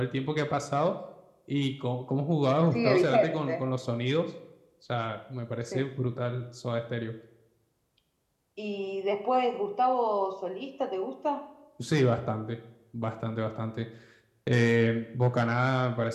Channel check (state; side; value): identical; both; correlation 1.00